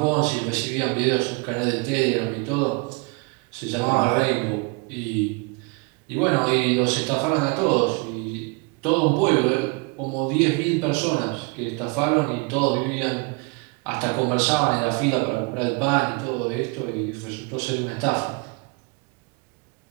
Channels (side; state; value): left; quieter; 29.8 dB